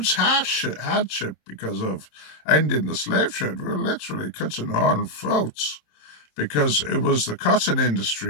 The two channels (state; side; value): late; right; 27 ms